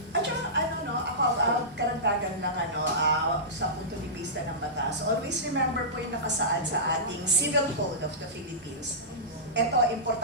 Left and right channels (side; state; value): both; normal; correlation -0.19